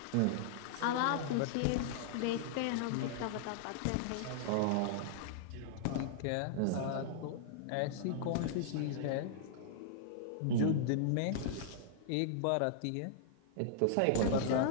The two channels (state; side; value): different; both; correlation -0.01